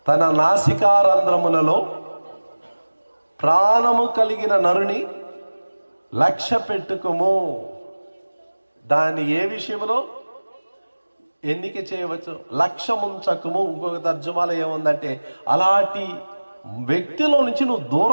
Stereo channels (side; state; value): both; inverted; correlation -1.00